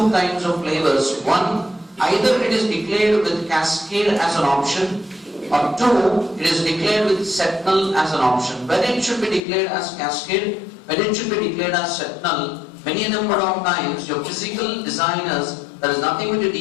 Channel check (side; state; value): right; drops out; at 9.4 s